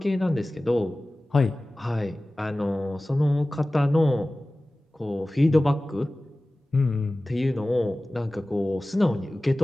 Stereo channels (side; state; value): both; normal; correlation 0.97